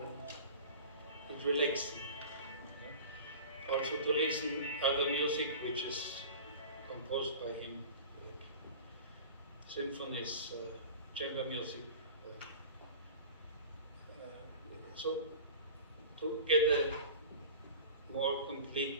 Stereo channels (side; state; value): both; inverted; correlation -0.38